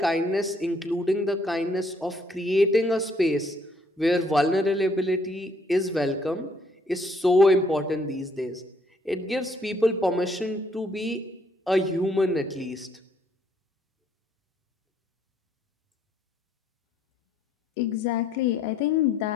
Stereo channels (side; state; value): both; normal; correlation 0.67